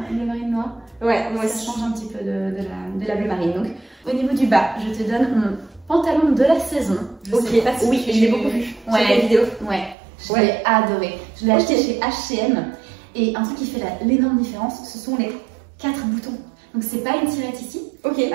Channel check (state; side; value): drops out; left; at 10.0 s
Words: bleu marine noir. Ouais, moi Ça aussi. change un petit peu de la bleu marine. Donc, au niveau du bas, je te donne mon pantalon de la saison. Je sais pas si oui, tu- je l'ai beaucoup vu sur les vidéos. Ouais, je l'ai adoré. Je l'ai acheté chez H&M. Et un truc qui fait l'énorme différence, ce sont les 4 boutons. Donc c'est pas une tirette ici. Ok.